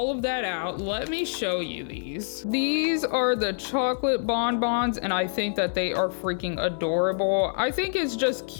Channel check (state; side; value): silent; right; 61 dB below the other